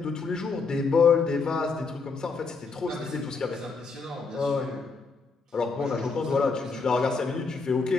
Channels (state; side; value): quieter; right; 4.5 dB